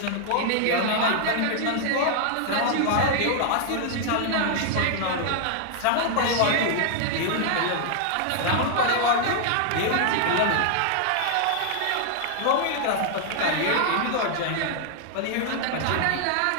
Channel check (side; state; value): both; different; correlation 0.00